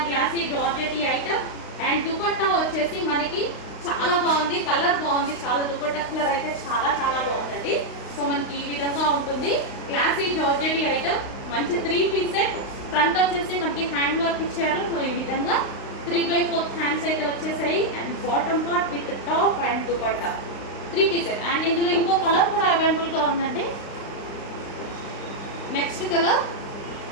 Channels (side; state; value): right; late; 35 ms